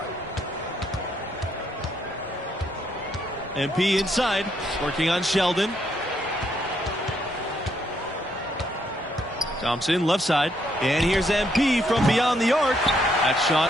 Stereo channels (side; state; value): both; normal; correlation 0.73